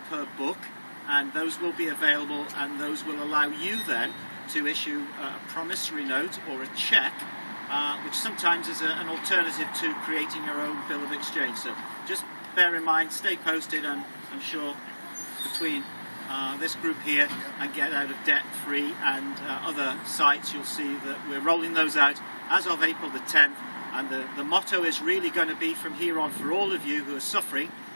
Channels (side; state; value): both; inverted; correlation -1.00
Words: per book, and those will be available, and those will allow you then to issue a promissory note or a cheque, which sometimes is an alternative to creating your own bill of exchange. So just bear in mind, stay posted, and I'm sure between this group here and Get Out of Debt Free and other sites, you'll see that we're rolling those out as of April the 10th, and the motto is really going to be from here on for all of you who are suffering